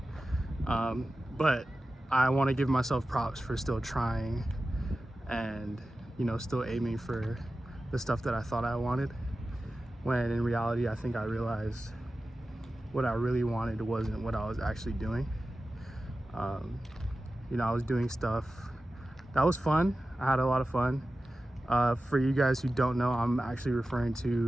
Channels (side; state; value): both; normal; correlation 0.94